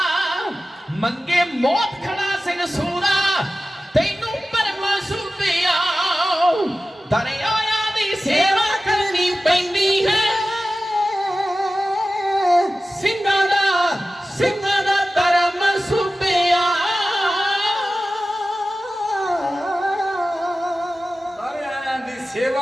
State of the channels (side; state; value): both; normal; correlation 0.95